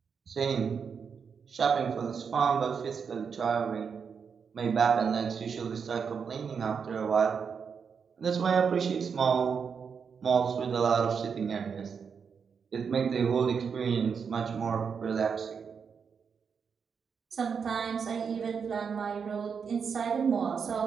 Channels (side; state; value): left; quieter; 6.3 dB